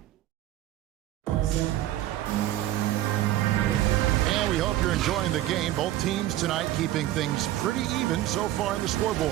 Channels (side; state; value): left; quieter; 14.3 dB